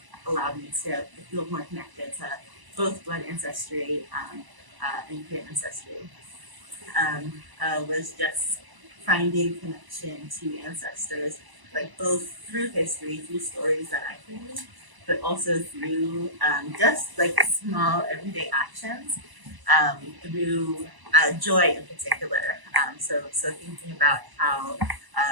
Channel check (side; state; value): left; late; 1.0 ms